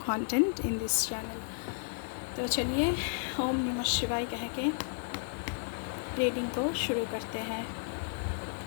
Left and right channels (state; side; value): silent; right; 56 dB below the other